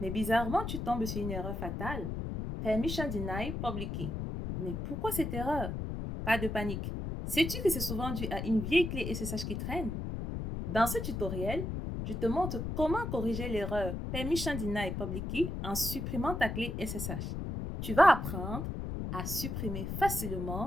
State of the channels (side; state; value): left; noise; rumble, 4 dB below the sound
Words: bizarrement, tu tombes sur une erreur fatale. Permission denied public key. Mais pourquoi cette erreur? Pas de panique. Sais-tu que c'est souvent dû à une vieille clé SSH qui traîne? Dans ce tutoriel, je te montre comment corriger l'erreur Permission denied public key en supprimant ta clé SSH. Tu vas apprendre à supprimer